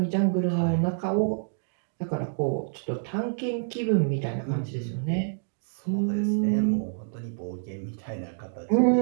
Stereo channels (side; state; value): left; silent; digital silence